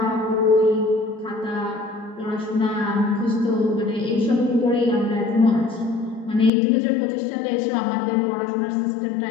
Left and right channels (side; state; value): right; drops out; at 6.5 s